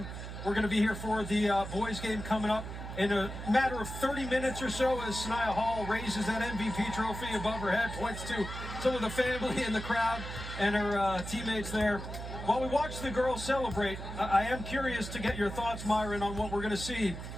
We're going to be here for the boys game coming up in a matter of 30 minutes or so as Sanaya Hall raises that MVP trophy above her head, points to some of the family in the crowd and her teammates there. While we watch the girls celebrate, I am curious to get your thoughts, Myron, on what we're going to see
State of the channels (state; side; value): noise; right; hum, 8 dB below the sound